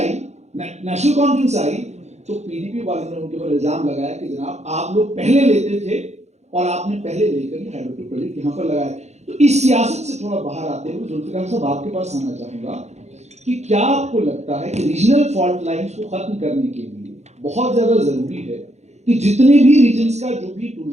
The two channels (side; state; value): left; late; 0.32 ms